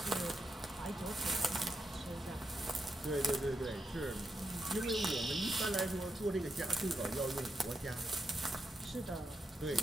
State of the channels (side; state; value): both; normal; correlation 0.84